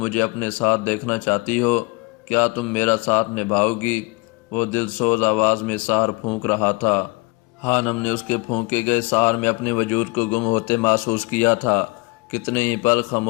اپنے ساتھ دیکھنا چاہتی ہو؟ کیا تم میرا ساتھ نبھاؤ گی؟ وہ دل سوز آواز میں سحر پھونک رہا تھا۔ خانم نے اس کے پھونکے گئے سحر میں اپنے وجود کو گم ہوتے محسوس کیا تھا۔ کتنے ہی پل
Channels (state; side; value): quieter; right; 27.0 dB